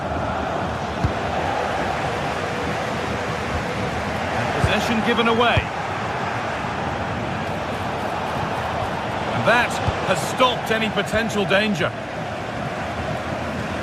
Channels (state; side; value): identical; both; correlation 1.00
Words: Possession given away. And that has stopped any potential danger.